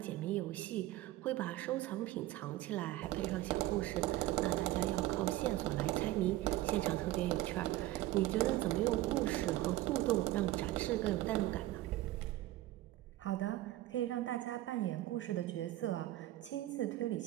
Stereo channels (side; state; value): left; quieter; 15.9 dB